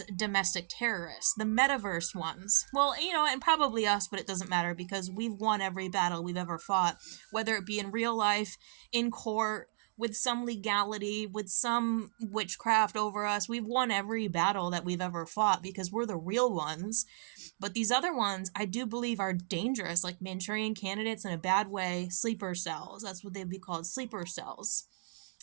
domestic terrorists. The metaverse ones, well, you know, and probably us, but it doesn't matter because we've won every battle we've ever fought, whether it be in real life, in court, with some legality, with some witchcraft over us. We've won every battle that we've ever fought because we're the real ones. But these other ones, I do believe, are dangerous, like Manchurian candidates in a bad way, sleeper cells. That's what they'd be called, sleeper cells.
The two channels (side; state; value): left; silent; digital silence